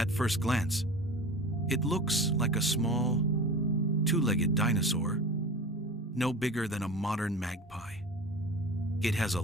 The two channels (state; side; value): normal; both; correlation 0.34